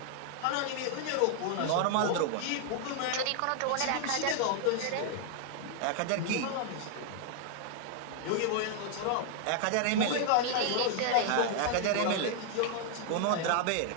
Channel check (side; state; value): both; different; correlation 0.00